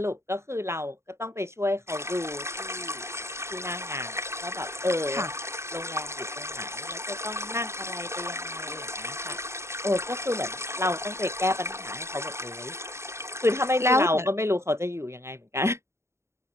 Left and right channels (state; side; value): late; left; 0.13 ms